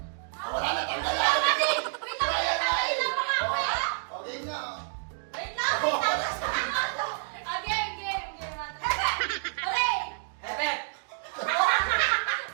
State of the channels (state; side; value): silent; left; digital silence